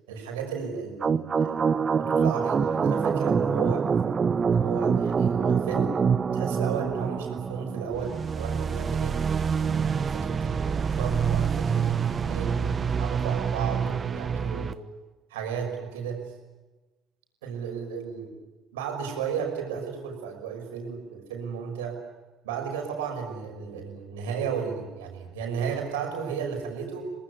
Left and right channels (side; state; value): left; quieter; 6.1 dB